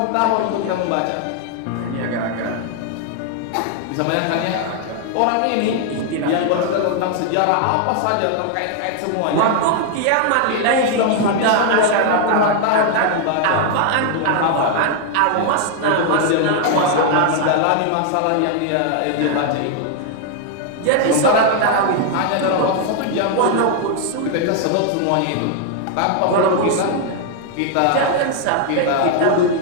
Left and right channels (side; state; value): both; different; correlation 0.00